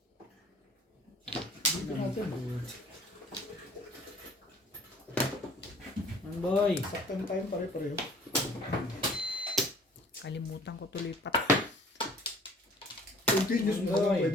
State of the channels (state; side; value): normal; both; correlation 0.52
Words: Dito natin. Boy. Saktan tayo pare-pareho. Kalimutan ko tuloy pa. Continuous mo lang, Ay.